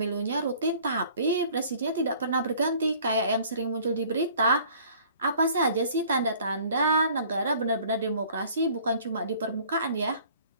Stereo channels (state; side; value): inverted; both; correlation -0.53